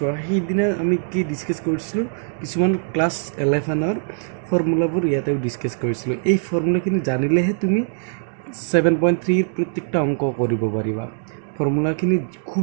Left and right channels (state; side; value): silent; left; digital silence